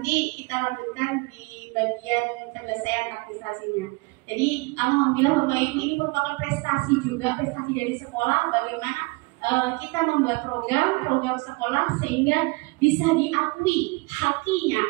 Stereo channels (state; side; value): quieter; left; 27.0 dB